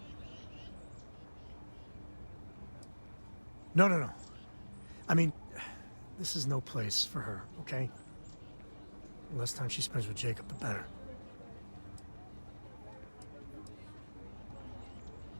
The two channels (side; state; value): both; inverted; correlation -1.00